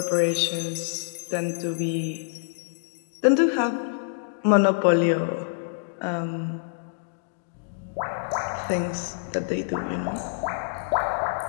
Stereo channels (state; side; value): silent; right; digital silence